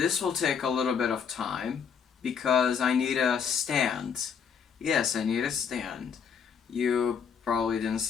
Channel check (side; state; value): right; quieter; 6.9 dB